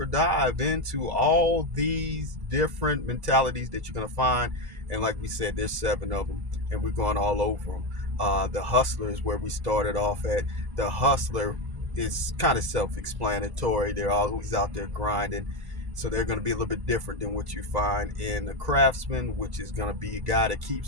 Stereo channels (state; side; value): late; left; 1.1 ms